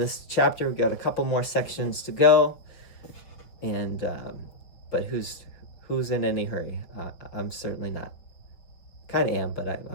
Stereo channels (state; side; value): late; right; 5.9 ms